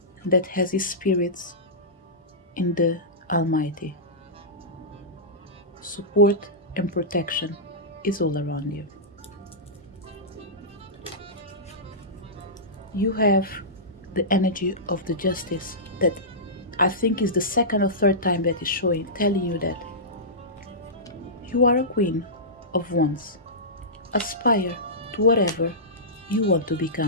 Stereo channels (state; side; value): normal; both; correlation -0.17